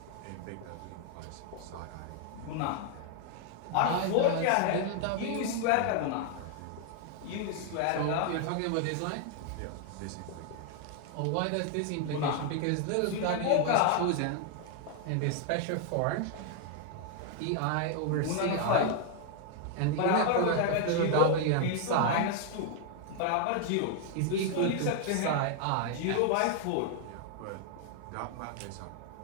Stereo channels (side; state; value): both; different; correlation 0.00